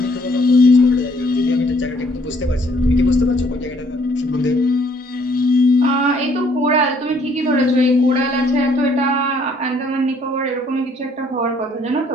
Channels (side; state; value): both; normal; correlation 0.64